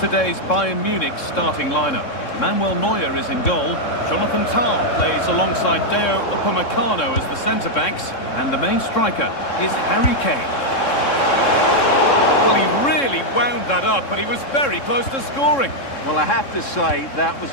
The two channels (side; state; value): right; late; 3.7 ms